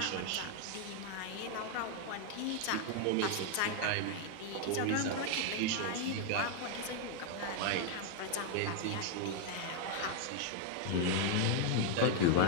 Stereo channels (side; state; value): both; different; correlation 0.00